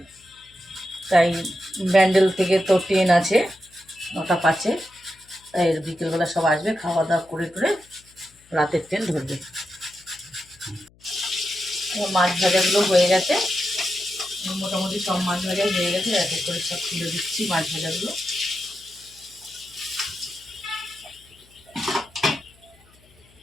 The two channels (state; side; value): noise; left; hum, 29 dB below the sound